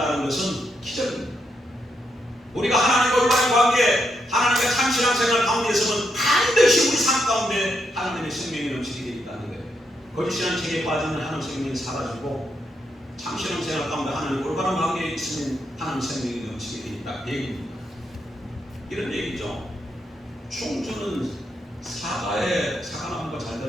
것은 기적입니다. 우리가 하나님과 올바른 관계, 하나님과 참 신앙생활 가운데 있으면 반드시 우리 삶 가운데 하나님의 생명이 넘치게 되어 있다는 거예요. 거짓 신앙 체계에 빠지면 하나님의 생명이 사라지고 참 신앙생활 가운데 하나님 올바른 관계에 있으면 하나님 생명이 넘치게 돼 있다. 얘기입니다. 이런 얘기죠. 충주는 사과나무가 잘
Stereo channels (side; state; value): both; normal; correlation 0.80